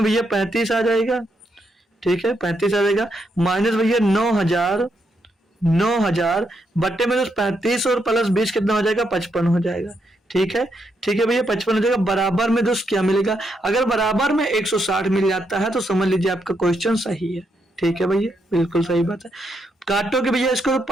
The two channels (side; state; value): both; normal; correlation 0.79